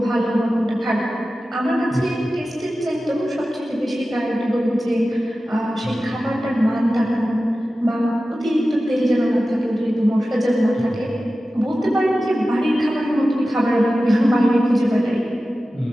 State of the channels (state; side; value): normal; both; correlation 0.94